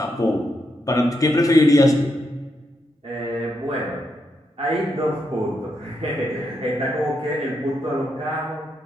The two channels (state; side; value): normal; both; correlation 0.81